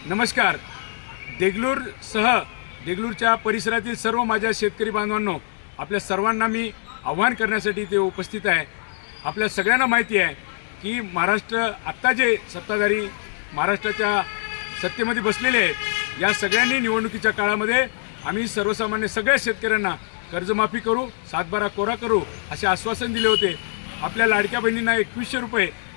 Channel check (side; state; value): right; silent; digital silence